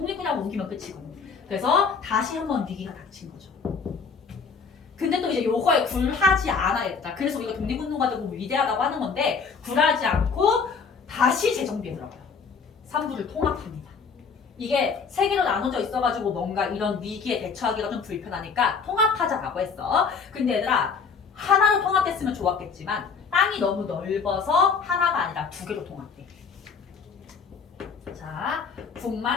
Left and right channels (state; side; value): quieter; right; 5.4 dB